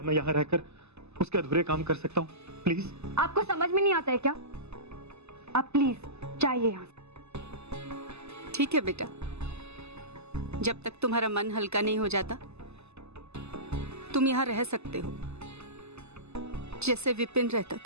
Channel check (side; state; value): left; late; 0.80 ms